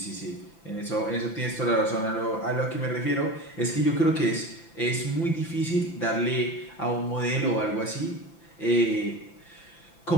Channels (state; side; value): late; right; 5.9 ms